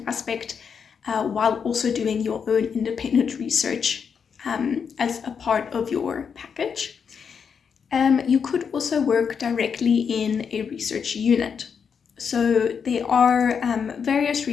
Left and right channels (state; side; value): quieter; right; 6.6 dB